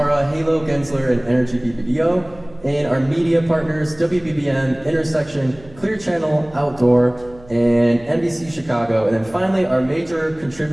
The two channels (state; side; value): noise; right; hum, 23 dB below the sound